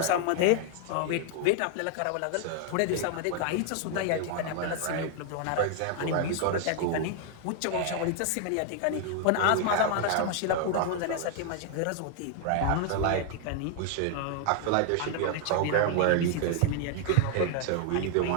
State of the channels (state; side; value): different; both; correlation 0.00